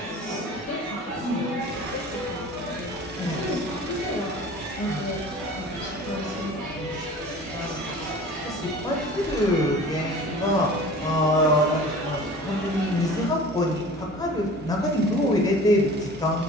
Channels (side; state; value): both; normal; correlation 0.42